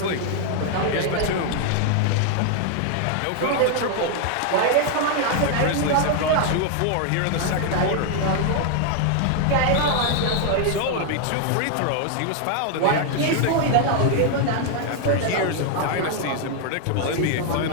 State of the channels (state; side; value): different; both; correlation 0.00